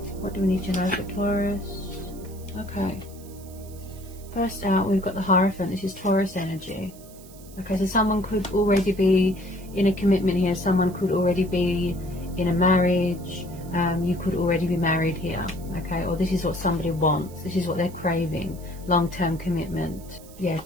What do we need to know for Taurus? Okay, first out we've got the Hierophant. This is Taurus energy. Okay, so someone could already be in a commitment here. Someone could already be in a marriage. You could already be married here. Okay, or this is what somebody wants. This is what they're craving. Long-term commitment. Yeah,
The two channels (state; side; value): noise; right; hiss, 21 dB below the sound